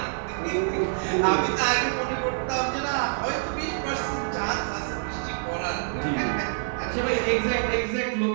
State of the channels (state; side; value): silent; left; digital silence